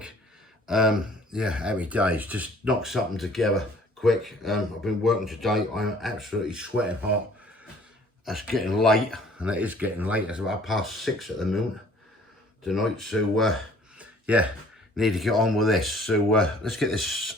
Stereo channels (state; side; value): normal; both; correlation 0.55